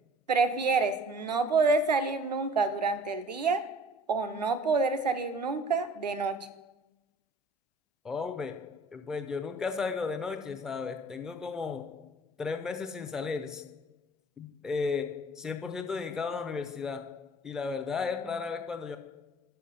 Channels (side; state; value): both; normal; correlation 0.50